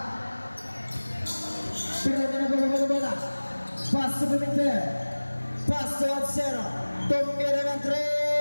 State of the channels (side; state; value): both; inverted; correlation -1.00